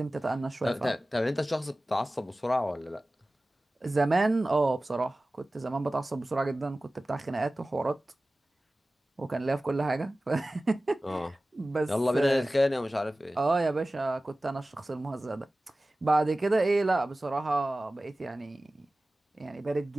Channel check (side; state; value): both; normal; correlation 0.97